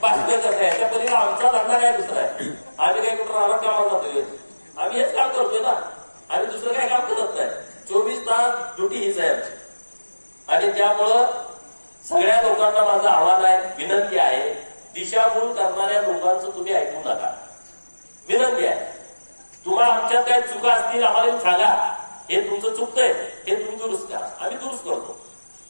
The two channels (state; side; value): inverted; both; correlation -1.00